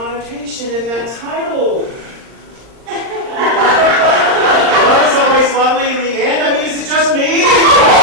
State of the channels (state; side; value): late; left; 39 ms